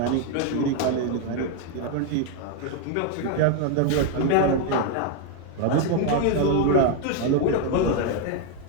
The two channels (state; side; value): different; both; correlation 0.01